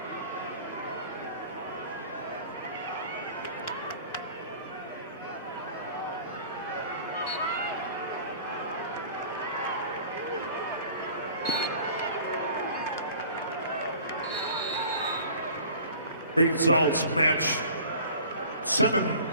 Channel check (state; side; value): inverted; both; correlation -0.45